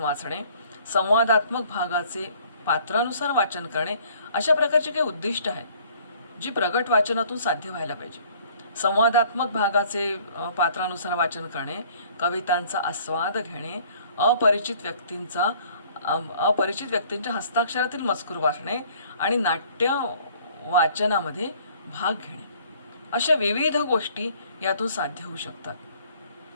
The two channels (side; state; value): both; inverted; correlation -0.56